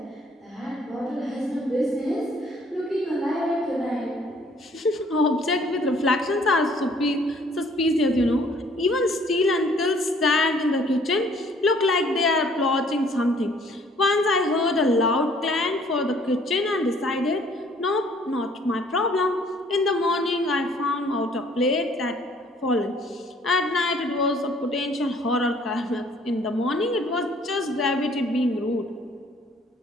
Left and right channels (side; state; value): both; normal; correlation 0.59